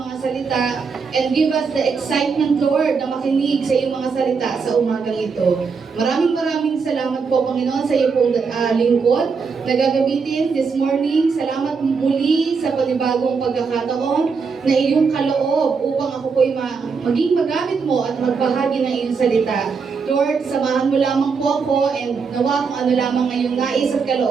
mga salita and give us the excitement, Lord, na makinig sa iyong mga salita sa umagang ito. Maraming salamat po, Panginoon, sa iyong pong lingkod na gagamitin this morning. Salamat muli sa panibagong pagkakataon na iyong kaloob upang ako po'y maging magamit mo at magbahagi ng iyong salita. Lord, samahan mo lamang po ako and nawa kung ano lamang ngayong nais at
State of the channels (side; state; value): left; quieter; 5.3 dB